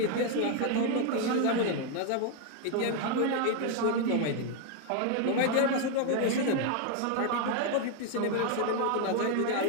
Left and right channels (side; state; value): both; different; correlation 0.01